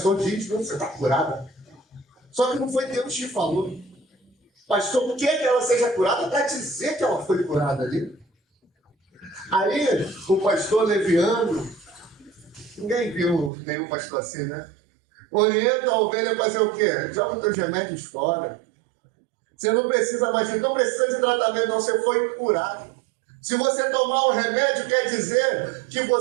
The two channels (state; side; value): drops out; left; at 13.5 s